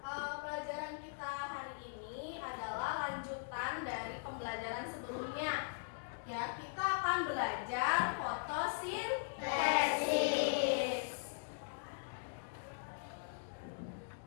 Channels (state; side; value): silent; right; digital silence